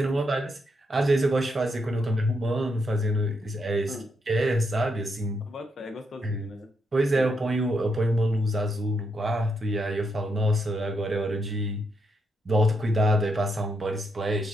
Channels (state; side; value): normal; both; correlation 0.79